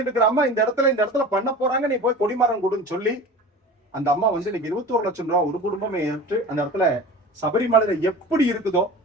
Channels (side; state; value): both; normal; correlation 0.37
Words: இருக்கிற அம்மா இந்த இடத்துல பண்ண போறாங்க, நீ போய் கொடிமரம் கொடுன்னு சொல்லி அந்த அம்மா வந்து இன்னைக்கு 21 லட்சம் ரூபாய் ஒரு குடும்பமே ஏற்று அந்த இடத்துல சபரிமலையில எப்படி இருக்குதோ